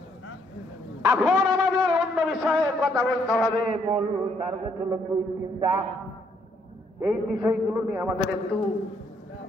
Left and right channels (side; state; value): both; normal; correlation 0.71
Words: এখন আমাদের অন্য বিষয়ে কথা বলতে হবে। মূল টার্গেট হলো 2-3টা। এই বিষয়গুলো নিয়ে আমাদের একটু